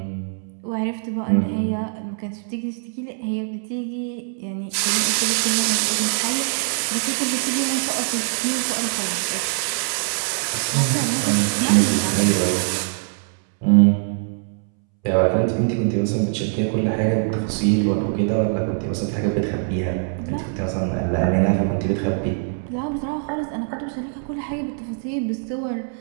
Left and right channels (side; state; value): left; silent; 64 dB below the other